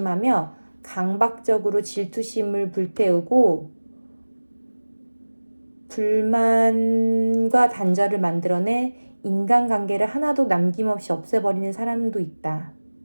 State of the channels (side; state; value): both; inverted; correlation -1.00